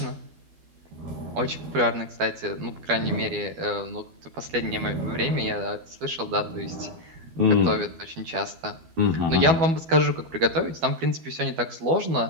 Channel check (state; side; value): late; left; 12 ms